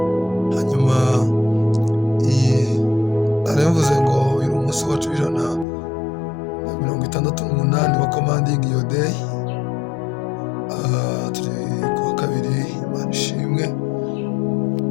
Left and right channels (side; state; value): right; drops out; at 5.7 s